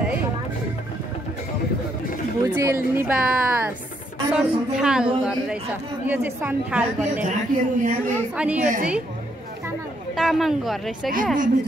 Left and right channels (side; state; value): both; normal; correlation 0.73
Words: भुजेल निवास सन्थाल घर रहेछ यो चाहिँ सन्थाल भन्ने अनि यो चाहिँ तामाङ घर रहेछ क्या